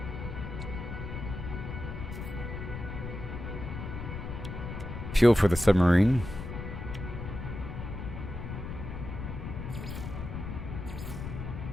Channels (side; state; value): left; noise; rumble, 7 dB below the sound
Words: Fuel for the submarine.